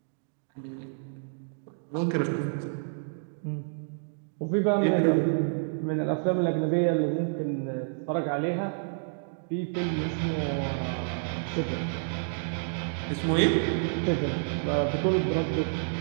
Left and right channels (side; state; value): left; silent; digital silence